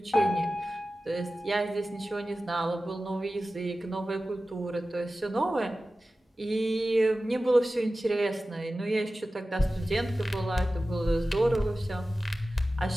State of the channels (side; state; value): both; normal; correlation 0.95